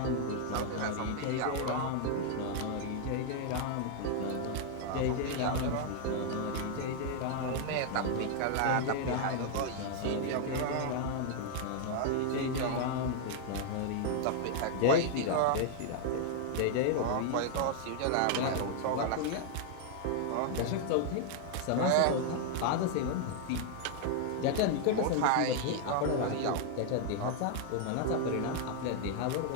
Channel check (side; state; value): both; different; correlation 0.00